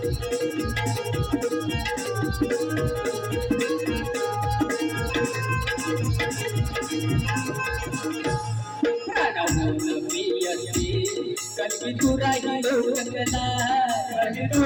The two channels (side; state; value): both; identical; correlation 1.00